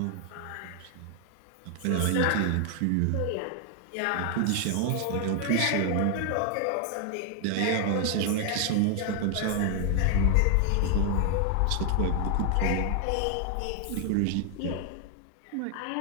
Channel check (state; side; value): different; both; correlation 0.00